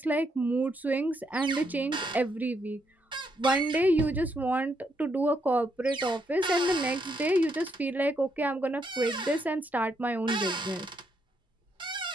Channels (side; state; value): both; normal; correlation 0.77